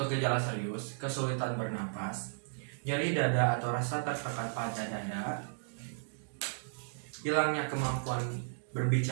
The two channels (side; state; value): left; silent; digital silence